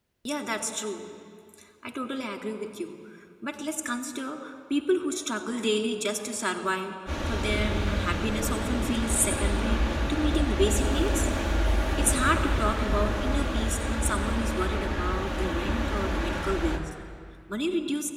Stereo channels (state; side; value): identical; both; correlation 1.00